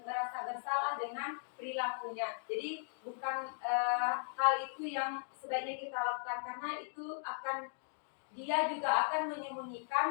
merasa bersalah dengan perilakunya. Jadi bukan hal itu yang sebaiknya kita lakukan, karena itu dia juga akan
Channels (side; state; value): right; silent; digital silence